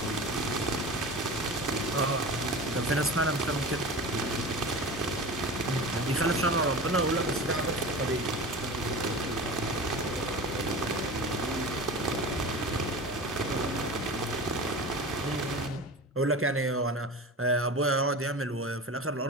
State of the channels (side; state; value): both; normal; correlation 0.32